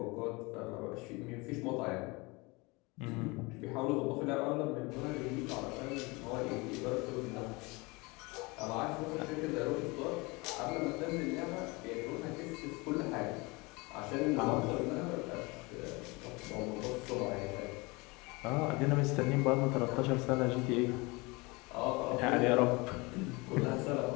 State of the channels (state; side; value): quieter; right; 25.6 dB